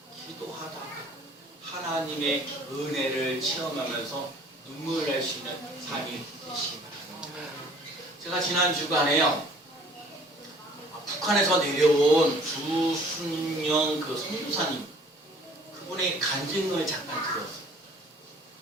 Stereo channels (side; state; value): both; normal; correlation 0.53